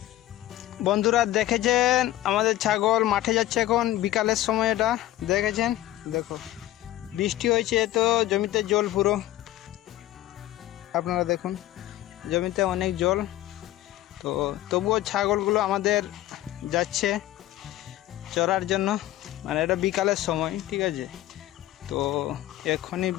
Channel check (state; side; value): quieter; right; 14.5 dB